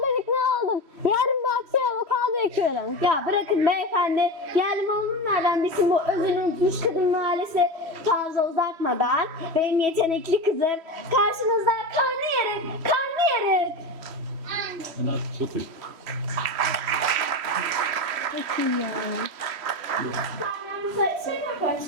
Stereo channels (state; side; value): late; left; 3.1 ms